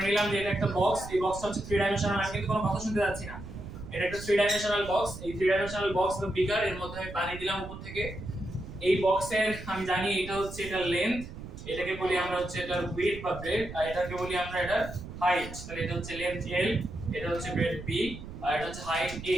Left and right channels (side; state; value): right; noise; rumble, 12 dB below the sound